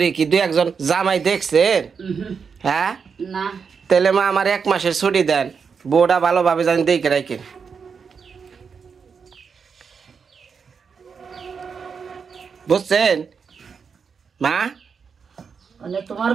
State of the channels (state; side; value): quieter; left; 6.0 dB